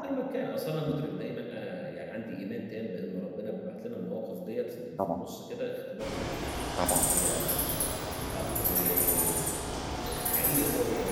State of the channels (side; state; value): both; identical; correlation 1.00